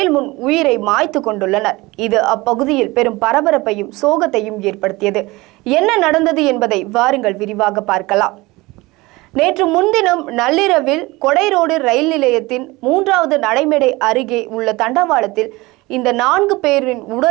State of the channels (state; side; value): quieter; left; 21.7 dB